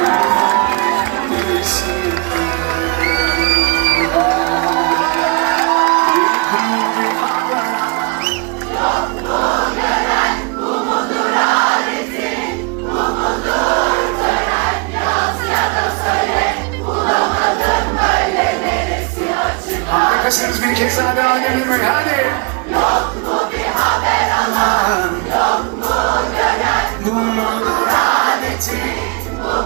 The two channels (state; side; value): quieter; left; 31.7 dB